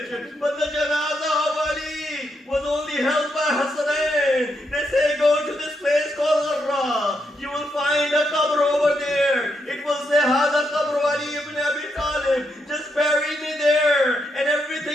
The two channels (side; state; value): both; normal; correlation 0.80